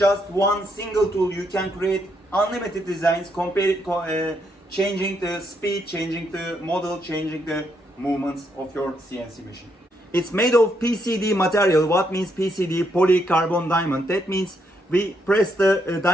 one single tool you can create unlimited designs, changing the speed, changing the model, changing the movements of your CNC machine. It's made of PCD material. What means PCD? Polycarbon diamond. That means we press the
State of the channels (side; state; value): both; normal; correlation 0.76